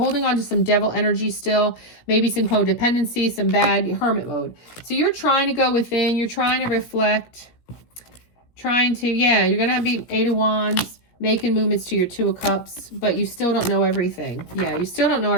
on to some devil energy still, maybe some codependency, some bad hermit mode. So you're trying to go within, you're trying to reflect, trying to, yeah, you're going to be 8 of Wands, making movements to your 2 of Cups, but you still don't know everything. Yeah, you still don't know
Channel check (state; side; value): late; right; 17 ms